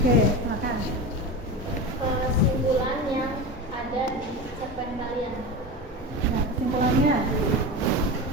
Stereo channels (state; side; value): normal; both; correlation 0.26